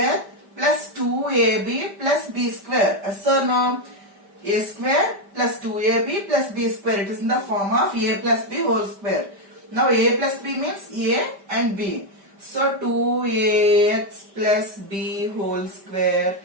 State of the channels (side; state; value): left; late; 5.1 ms